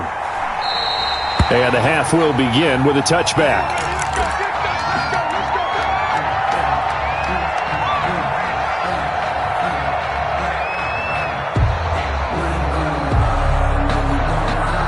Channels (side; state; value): both; identical; correlation 1.00